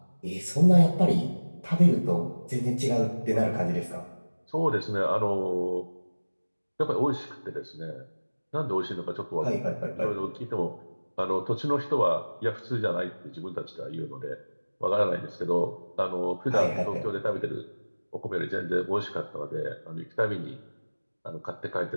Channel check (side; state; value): both; inverted; correlation -1.00